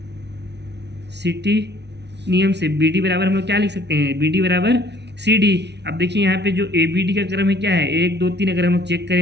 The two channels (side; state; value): left; late; 0.50 ms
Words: नियम से BD बराबर हम लोग क्या लिख सकते हैं, BD बराबर सी डी। अब देखिए यहाँ पे जो ए बी डी का क्रम है क्या है 1 2 3, अगर हम लोग चेक